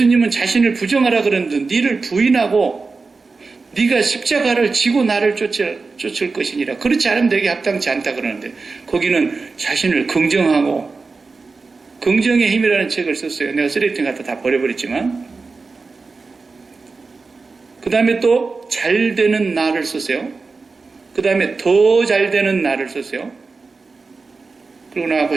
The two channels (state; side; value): quieter; left; 4.2 dB